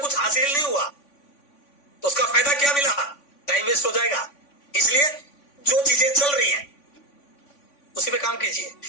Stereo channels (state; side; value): late; right; 3.5 ms